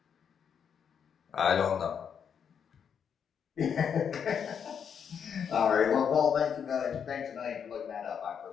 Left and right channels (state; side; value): quieter; right; 7.5 dB